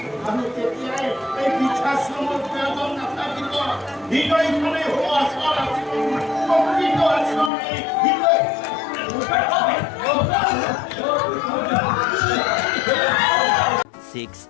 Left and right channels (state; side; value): drops out; right; at 7.5 s